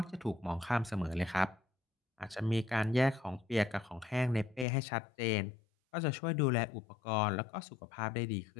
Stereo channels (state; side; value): drops out; right; at 4.7 s